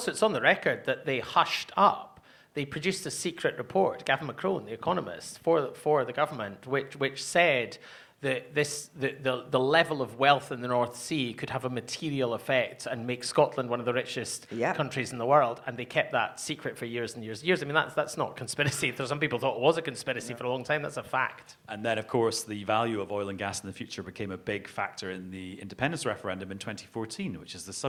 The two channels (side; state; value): both; identical; correlation 1.00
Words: it's on the record that they hushed up. They produced a secret report, Gavin McCrone, the economist, for the government, which said the level of wealth in the North Sea could have a material effect and make Scotland one of the richest countries in the world, and they kept that secret for years and years and years. I mean, that's not conspiracy. Some people thought it was a conspiracy for a long time. That's a fact. And then, of course, the value of oil and gas in the future became a big factor in the independence referendum in 2014, which is the